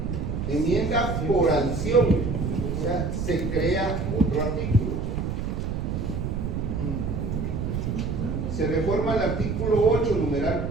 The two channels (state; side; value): noise; right; rumble, 2 dB below the sound